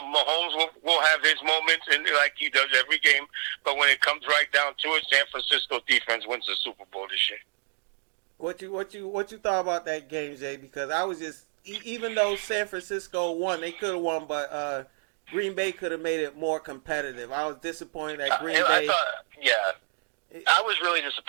Mahomes will have his moments, and like he does every game. But when it comes right down to it, San Francisco defense wins the Super Bowl this year. What you thought about that game, Jay? Because I was just, even though San Francisco won, they could have won, but Green Bay could have made it more competitive. I was disappointed that Green Bay. I was really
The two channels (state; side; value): silent; left; 57 dB below the other